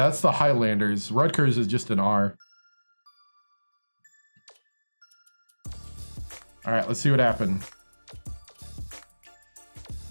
that's the Highlanders. Rutgers is just an R. All right, let's see what happened.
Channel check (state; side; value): inverted; both; correlation -1.00